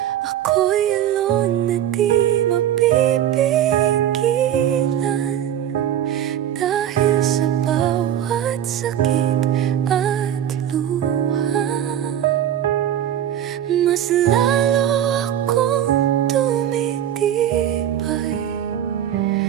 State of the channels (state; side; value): quieter; left; 10.7 dB